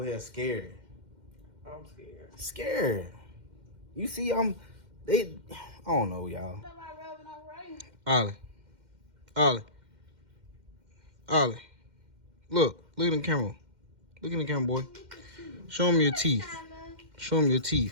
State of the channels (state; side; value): late; left; 2.1 ms